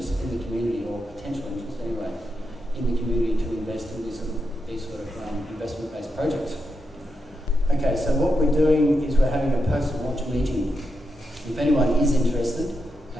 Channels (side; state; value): both; normal; correlation 0.85